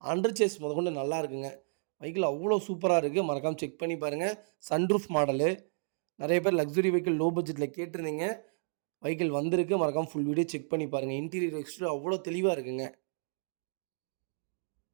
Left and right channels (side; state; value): left; silent; digital silence